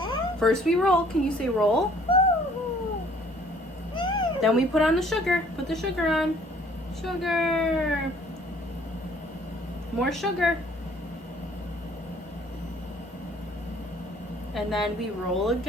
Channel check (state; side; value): normal; both; correlation 0.58